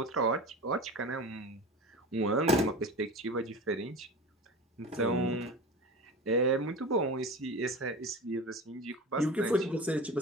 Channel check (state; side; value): normal; both; correlation 0.31